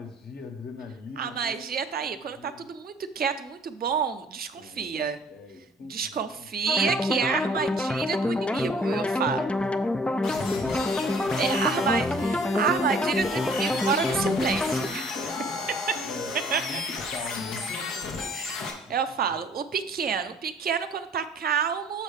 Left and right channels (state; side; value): normal; both; correlation 0.56